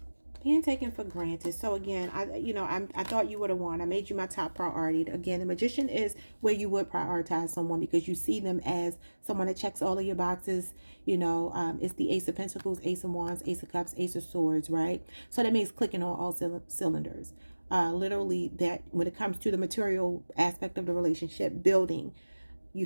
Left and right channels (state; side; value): inverted; both; correlation -1.00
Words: Being taken for granted. So again, I thought you would have won. I made you my top priority. Again, the Magician is where you would prioritize someone because you see them as someone that checks all of your boxes. You know, it's the Ace of Pentacles, Ace of Wands, Ace of Cups, Ace of Swords, right? So that means clicking on all cylinders. Literally, that when it comes to the material aspect of the relationship, building, you